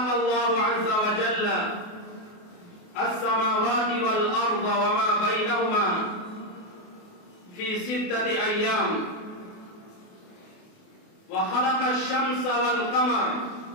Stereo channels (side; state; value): right; late; 28 ms